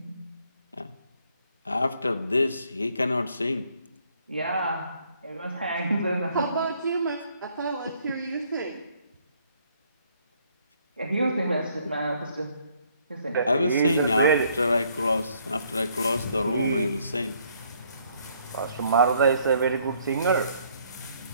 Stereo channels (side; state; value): both; inverted; correlation -0.66